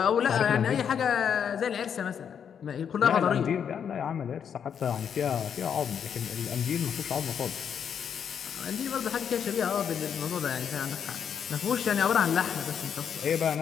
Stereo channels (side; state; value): right; quieter; 7.8 dB